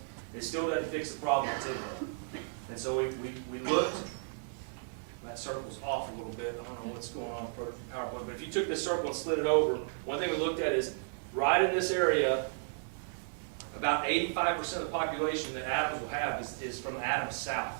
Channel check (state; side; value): silent; left; digital silence